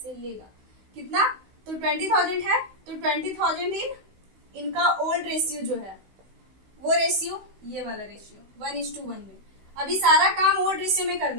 लेगा। कितना? तो 20,000 है, तो 20,000 इनका ओल्ड रेशियो जो है वो रेशियो, ये वाला रेशियो 1:1 में। अभी सारा काम ओल्ड रेशियो में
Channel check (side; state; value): left; late; 16 ms